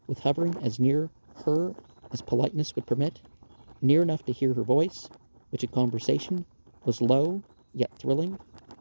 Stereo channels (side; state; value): both; inverted; correlation -1.00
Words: with hovering as near her as politeness would permit, near enough to hear her voice, which in conversation was low yet thrilling,